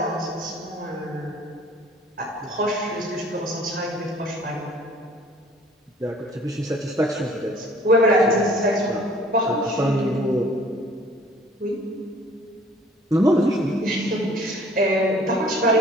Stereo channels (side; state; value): both; normal; correlation 0.53